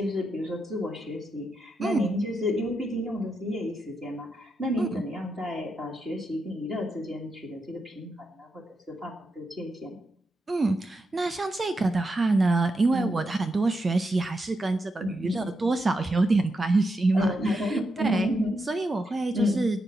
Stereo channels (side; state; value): both; normal; correlation 0.84